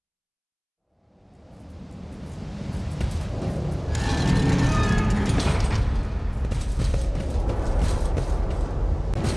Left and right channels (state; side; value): identical; both; correlation 1.00